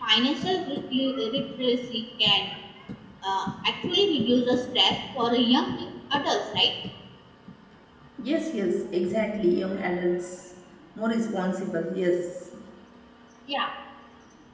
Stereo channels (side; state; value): both; identical; correlation 1.00